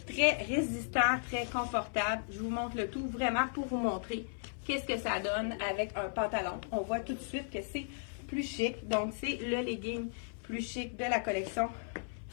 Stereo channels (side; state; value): right; silent; 54 dB below the other